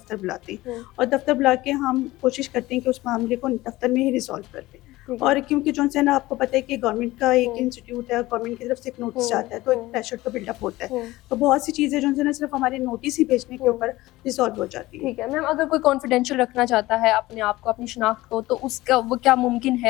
بلاتے ہیں، اور دفتر بلا کے ہم کوشش کرتے ہیں کہ اس معاملے کو دفتر میں ہی ریزالو کر دیں. اور کیونکہ جو ہے نا آپ کو پتہ ہے کہ گورنمنٹ کا ایک انسٹیٹیوٹ ہے، گورنمنٹ کی طرف سے ایک نوٹس جاتا ہے تو ایک پریشر تو بلڈ اپ ہوتا ہے، تو بہت سی چیزیں جو ہے نا صرف ہمارے نوٹس ہی بھیجنے کے اوپر ریزالو ہو جاتی ہیں. ٹھیک ہے. میم اگر کوئی کانفیڈینشیل رکھنا چاہتا ہے اپنے آپ کو، اپنی شناخت کو، تو اس کا وہ کیا ممکن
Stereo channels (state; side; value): quieter; right; 18.4 dB